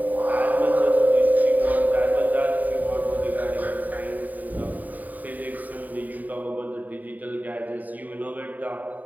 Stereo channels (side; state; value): left; late; 0.081 ms